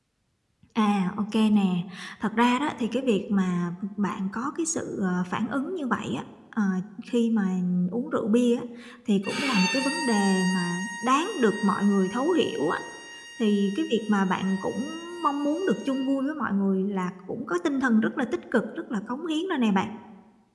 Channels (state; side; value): identical; both; correlation 1.00